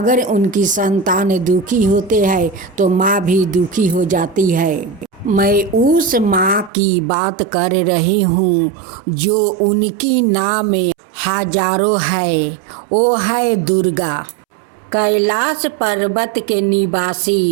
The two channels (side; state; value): left; drops out; at 6.7 s